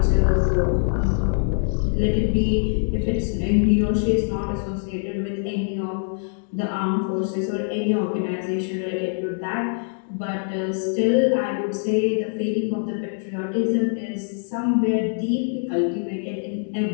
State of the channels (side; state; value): right; silent; digital silence